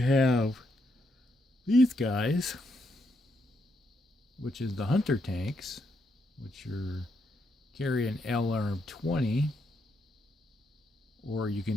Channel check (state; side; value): normal; both; correlation 0.78